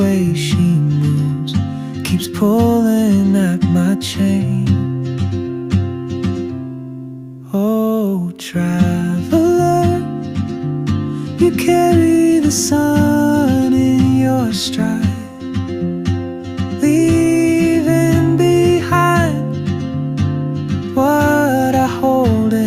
way she moves keeps pulling at my chain. Oh, traveler, you carry the sun in your stride, leaving behind what I hold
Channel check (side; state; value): both; identical; correlation 1.00